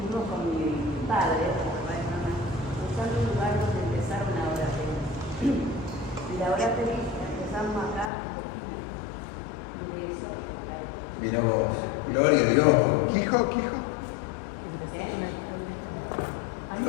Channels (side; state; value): right; drops out; at 8.1 s